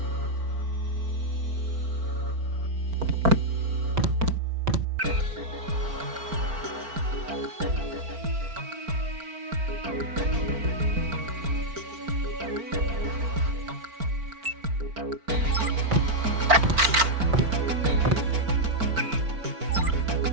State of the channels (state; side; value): late; left; 4.4 ms